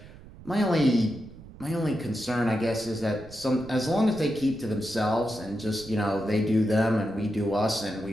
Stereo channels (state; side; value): noise; right; rumble, 18 dB below the sound